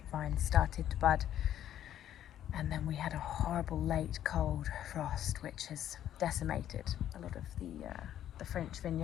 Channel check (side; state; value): right; quieter; 11.2 dB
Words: started to bud, and then we had a horrible late cold frost which has decimated a lot of the French